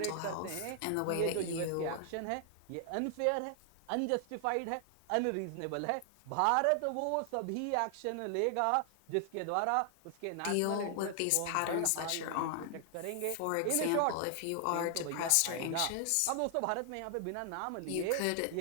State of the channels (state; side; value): different; both; correlation 0.00